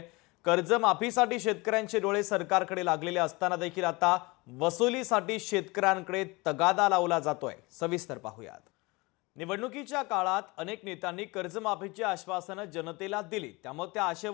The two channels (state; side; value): quieter; right; 24.6 dB